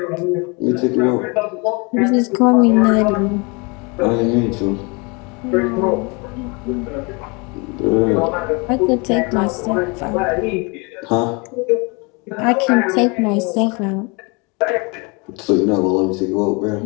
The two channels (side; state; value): right; quieter; 29.9 dB